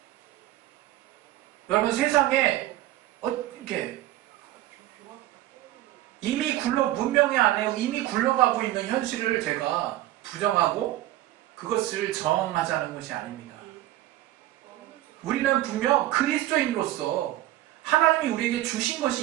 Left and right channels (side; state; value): left; quieter; 15.1 dB